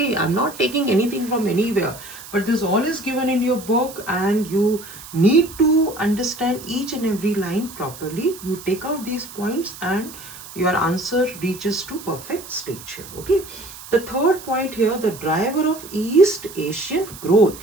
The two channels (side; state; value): right; noise; hiss, 15 dB below the sound